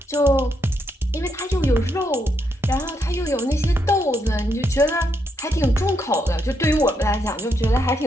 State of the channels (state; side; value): normal; both; correlation 0.79